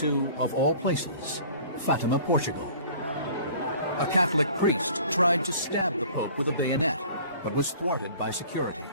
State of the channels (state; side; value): inverted; both; correlation -0.48